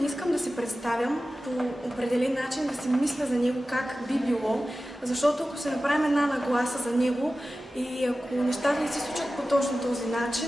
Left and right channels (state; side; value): normal; both; correlation 0.95